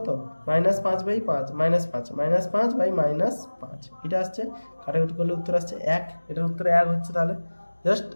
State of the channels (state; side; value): inverted; both; correlation -1.00